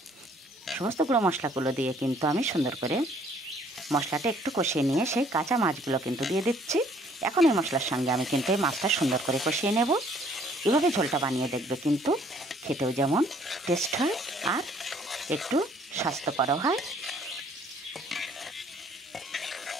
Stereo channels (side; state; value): both; normal; correlation 0.60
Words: সমস্ত গুঁড়ো মশলাগুলো দিয়ে কিন্তু আমি সুন্দর করে মশলাটা একটু কষিয়ে নিয়ে সেই কাঁচা মাছগুলো কিন্তু দিয়ে দিচ্ছি। এখন এই মশলার সঙ্গে আমি কিন্তু এই মাছটা সুন্দর করে কষিয়ে নেব। এভাবে ঝোলটা বানিয়ে দেখবে, কিন্তু খেতেও যেমন টেস্ট হয় আর একটু স্বাস্থ্যকরও হয়।